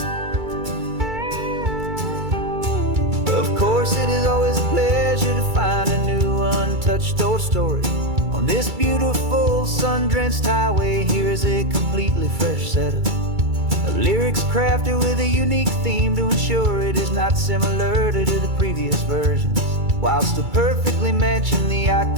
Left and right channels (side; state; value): left; late; 2.3 ms